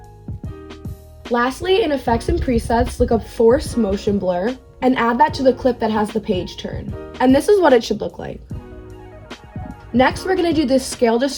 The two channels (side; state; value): both; identical; correlation 1.00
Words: Lastly, in Effects and Presets, look up Force Motion Blur and add that to the clip that has the page turn. And this is what it should look like. Next, we're going to do this Scale